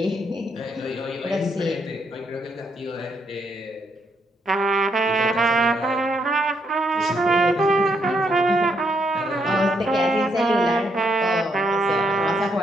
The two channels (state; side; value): normal; both; correlation 0.75